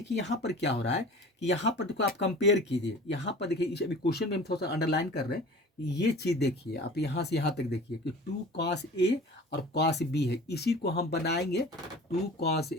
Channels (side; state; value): both; normal; correlation 0.41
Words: यहाँ पर क्या हो रहा है कि यहाँ पर देखो आप कंपेयर कीजिए, यहाँ पर देखिए इस अभी क्वेश्चन में हम थोड़ा सा अंडरलाइन कर रहे हैं, ये चीज़ देखिए आप यहाँ से यहाँ तक देखिए कि 2 cos A और cos B है, इसी को हम बनाएंगे 2 cos